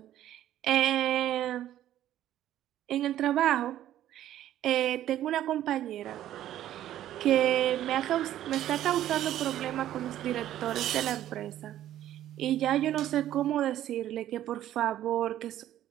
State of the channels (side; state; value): left; quieter; 12.5 dB